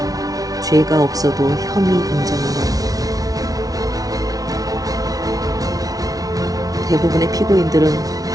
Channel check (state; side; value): late; left; 0.18 ms